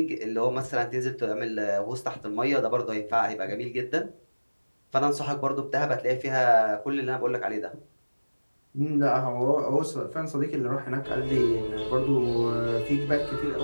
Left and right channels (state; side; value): inverted; both; correlation -1.00